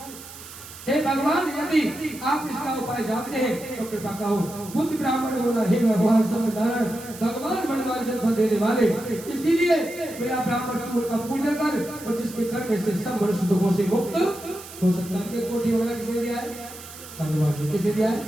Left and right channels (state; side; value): noise; right; hiss, 15 dB below the sound